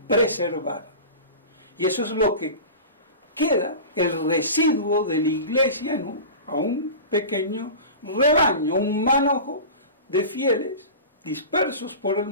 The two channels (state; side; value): inverted; both; correlation -0.32